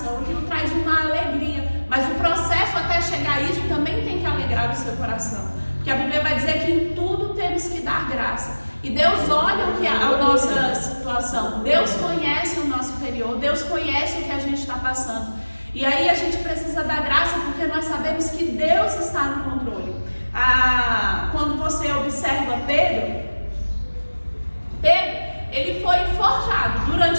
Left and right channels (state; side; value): inverted; both; correlation -1.00